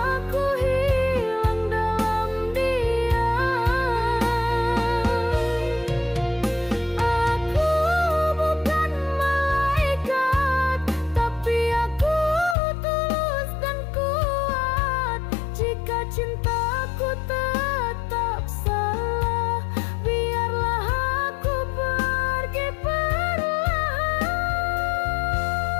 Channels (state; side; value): drops out; right; at 12.6 s